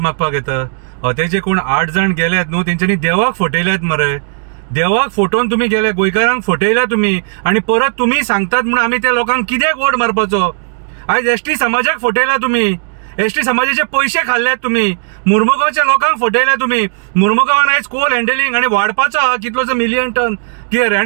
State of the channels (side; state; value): left; silent; digital silence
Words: येता? ते जे कोण 8 जण गेल्यात न्हू, तेंच्यांनी देवाक फटयल्यात मरे. देवाक फटोवन तुम्ही गेले, गोंयकारांक फटयल्या तुम्ही, आणि परत तुम्ही सांगतात म्हणून आम्ही त्या लोकांक कित्याक वोट मारपाचो? आयज एसटी समाजाक फटयला तुम्ही, एसटी समाजाचे पैसे खाल्ल्यात तुम्ही, मुर्मुगांवच्या लोकांक फटयल्या तुम्ही. मुर्मुगांवान आयज कोल हँडलिंग आणि वाडपाचो हा कितलोसो मिलियन टन कितें रे,